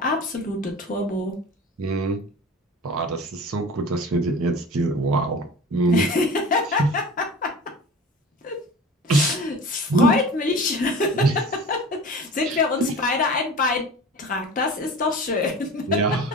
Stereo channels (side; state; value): both; normal; correlation 0.38